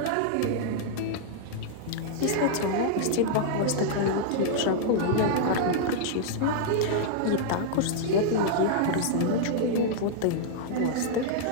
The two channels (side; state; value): both; different; correlation -0.01